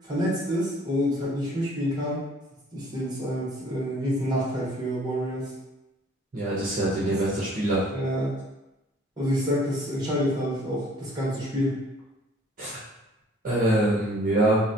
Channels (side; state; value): both; normal; correlation 0.56